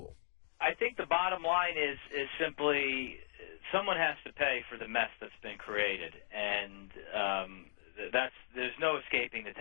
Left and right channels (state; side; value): silent; right; digital silence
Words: I think the bottom line is simply someone has to pay for the mess that's been created, and there's no escaping the